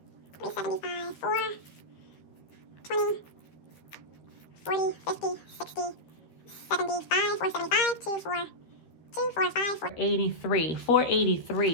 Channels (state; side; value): late; right; 13 ms